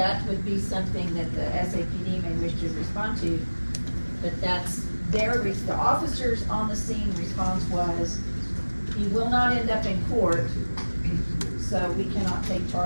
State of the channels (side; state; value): both; inverted; correlation -1.00